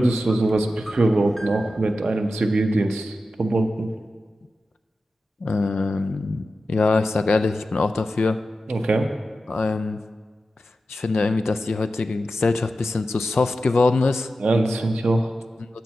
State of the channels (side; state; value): both; normal; correlation 0.92